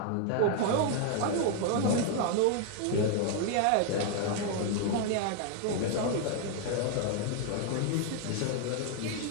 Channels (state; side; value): different; both; correlation 0.00